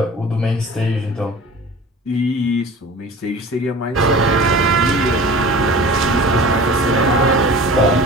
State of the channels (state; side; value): normal; both; correlation 0.40